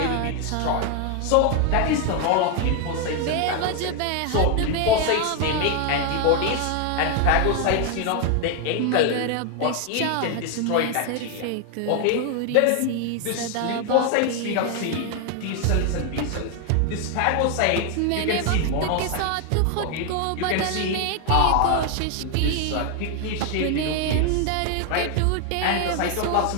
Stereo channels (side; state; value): both; different; correlation 0.01